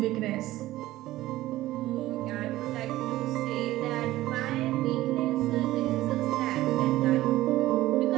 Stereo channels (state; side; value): quieter; left; 16.1 dB